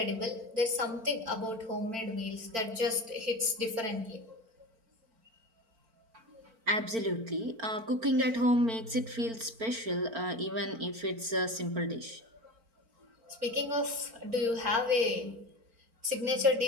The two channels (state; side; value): late; left; 4.4 ms